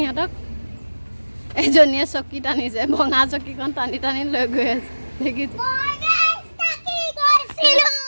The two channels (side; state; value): both; inverted; correlation -1.00